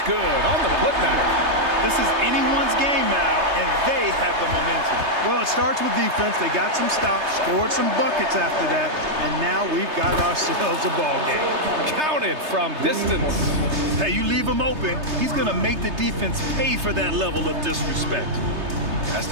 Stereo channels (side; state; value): left; late; 3.3 ms